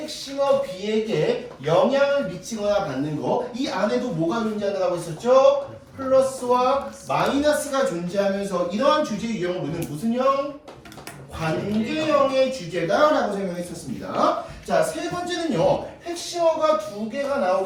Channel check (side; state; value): both; identical; correlation 1.00